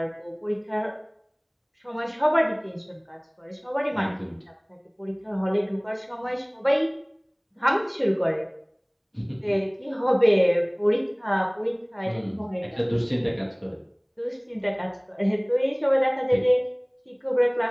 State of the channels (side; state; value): both; identical; correlation 1.00